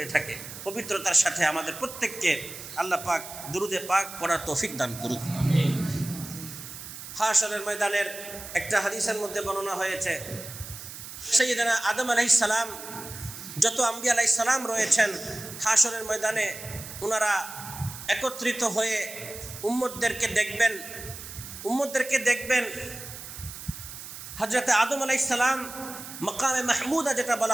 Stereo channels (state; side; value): noise; right; hiss, 12 dB below the sound